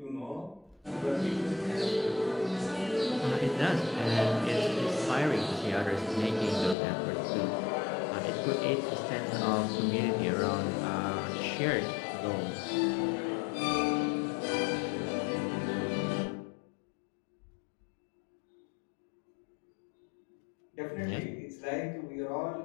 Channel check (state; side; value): drops out; right; at 6.8 s